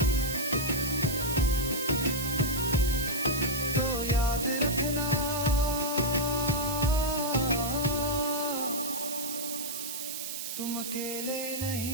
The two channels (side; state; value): right; noise; hiss, 5 dB below the sound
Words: तो याद रखना तुम अकेले